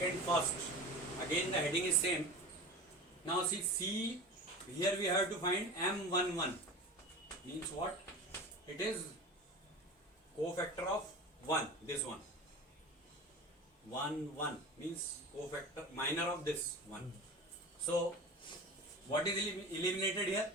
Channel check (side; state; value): both; normal; correlation 0.33